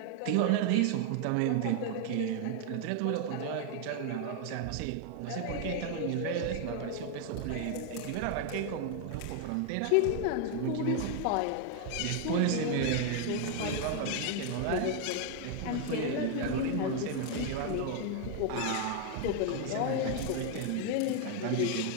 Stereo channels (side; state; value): both; different; correlation 0.00